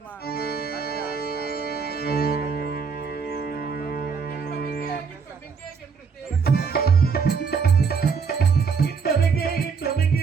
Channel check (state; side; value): quieter; left; 5.6 dB